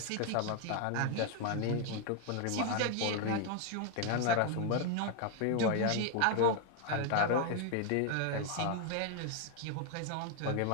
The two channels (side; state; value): both; different; correlation 0.01